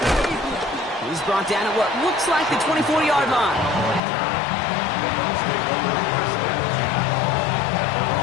He's brought down at what looks like the 24-yard line.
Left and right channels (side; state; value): right; drops out; at 4.0 s